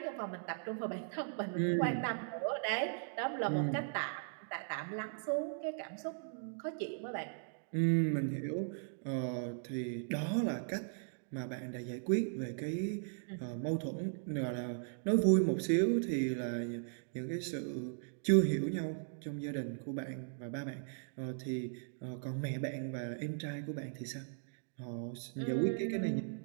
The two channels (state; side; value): silent; left; digital silence